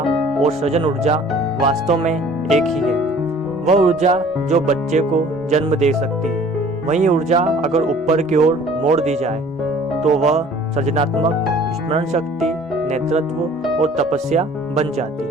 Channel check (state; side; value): normal; both; correlation 0.51